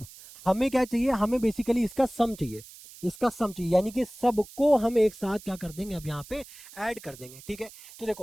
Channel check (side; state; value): right; noise; hiss, 19 dB below the sound